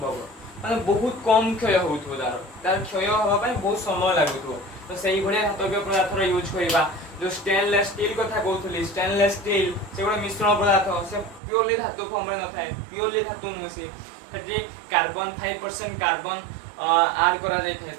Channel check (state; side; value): drops out; left; at 11.4 s